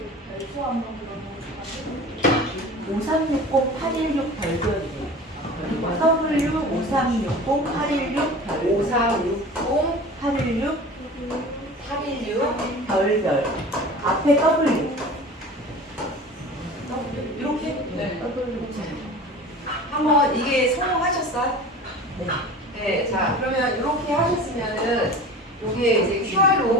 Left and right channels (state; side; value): normal; both; correlation 0.38